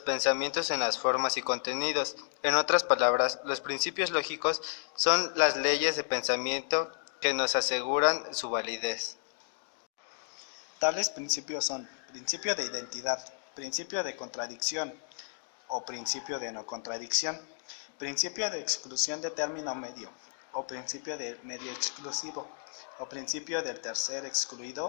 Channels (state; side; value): silent; right; digital silence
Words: en las formas y contenidos. En otras palabras, los principios lógicos son las leyes de pensamiento que nos aseguran su validez. Tales principios son principio de identidad, principio de contradicción o principio de no contradicción, principio de exclusión de término medio o principio de medio exclusivo o principio del tercer